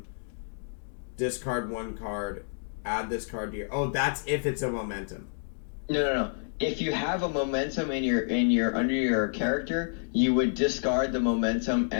Discard 1 card. Add this card to your. Oh, that's if it's a momentum. No. If you have a momentum in your under your character, you would discard the momentum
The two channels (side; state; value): right; silent; digital silence